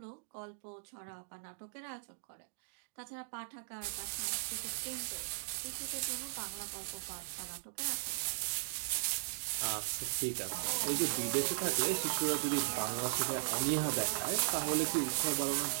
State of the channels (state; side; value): silent; left; digital silence